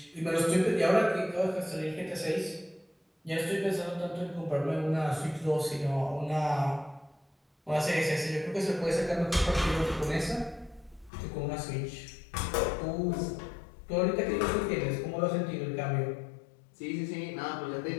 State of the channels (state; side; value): drops out; right; at 11.1 s